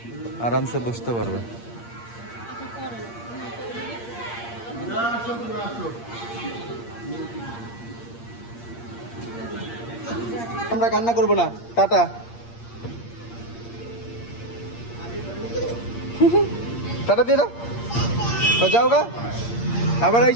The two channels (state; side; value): late; right; 8.6 ms